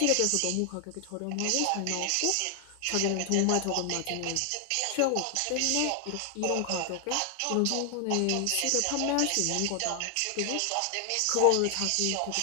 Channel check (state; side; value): different; both; correlation 0.00